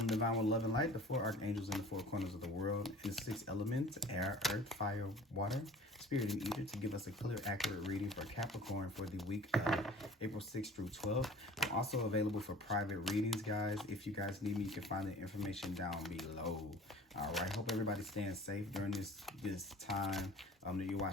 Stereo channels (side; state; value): both; normal; correlation 0.45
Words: divine with love and light, the 4 archangels in the 4 corners of the world, and the 6 elements, air, earth, fire, water, spirit, and ether, to give us a clear, accurate reading for Capricorn for the week of April 6th through 12th. I'm also available for private readings, guys. If you guys need me, you can find the information down below. All right, hope everybody's staying safe during this time, that you're